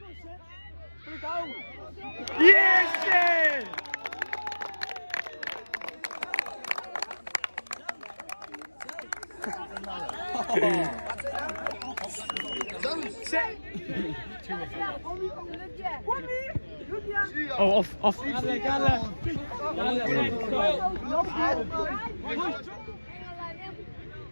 Put it down. Yes, Seth. Oh, off.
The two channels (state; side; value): inverted; both; correlation -1.00